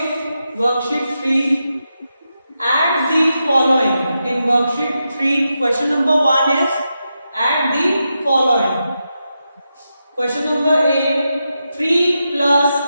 worksheet 3, add the following. In worksheet 3, question number 1 is add the following. Question number 8, 3 plus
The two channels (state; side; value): inverted; both; correlation -0.87